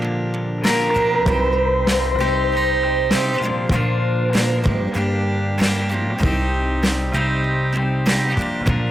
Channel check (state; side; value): normal; both; correlation 0.89